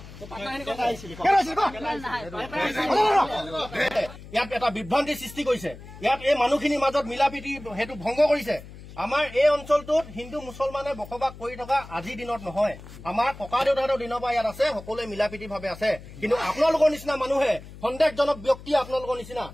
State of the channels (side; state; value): left; noise; hum, 16 dB below the sound